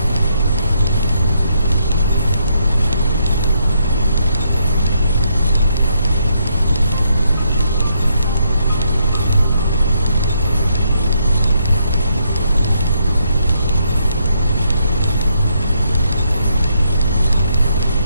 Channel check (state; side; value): inverted; both; correlation -0.75